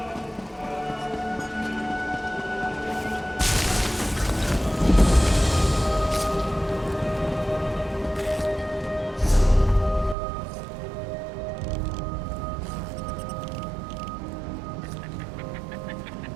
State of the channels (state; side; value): drops out; left; at 10.2 s